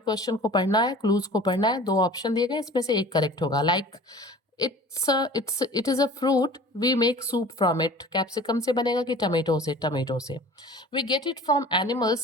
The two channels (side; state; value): both; normal; correlation 0.43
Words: को पढ़ना है, क्लूज को पढ़ना है। दो ऑप्शन दिए गए, इसमें से एक करेक्ट होगा। Like it is a fruit, we make soup from it. Capsicum से बनेगा कि टमेटो से? टमेटो से। We get it from